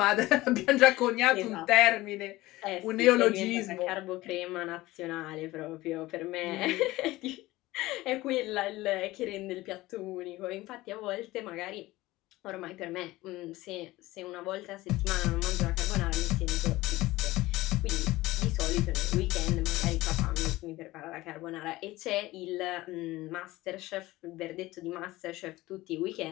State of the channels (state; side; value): quieter; right; 18.5 dB